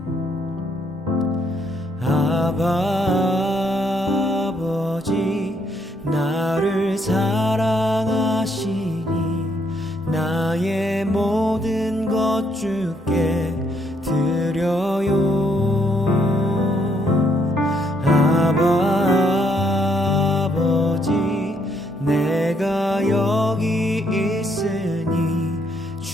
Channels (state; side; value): normal; both; correlation 0.72